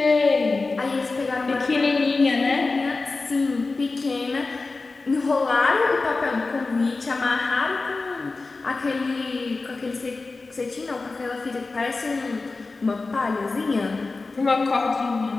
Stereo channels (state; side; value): quieter; right; 3.7 dB